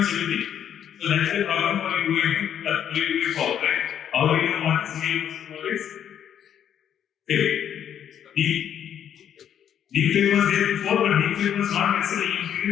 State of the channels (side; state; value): right; quieter; 9.4 dB